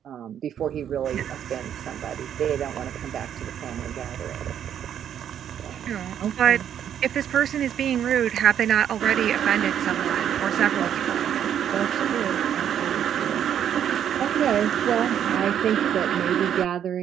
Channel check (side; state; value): left; quieter; 9.5 dB